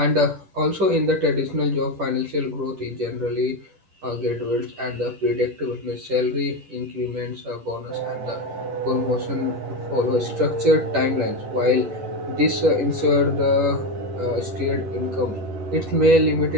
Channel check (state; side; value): late; left; 10 ms